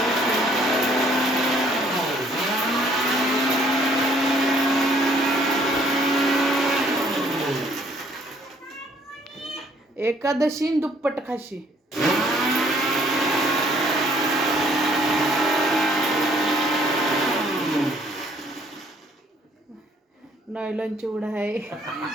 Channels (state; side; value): normal; both; correlation 0.63